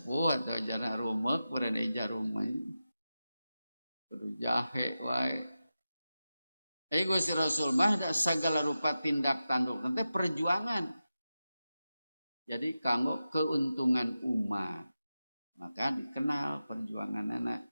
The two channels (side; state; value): both; inverted; correlation -0.92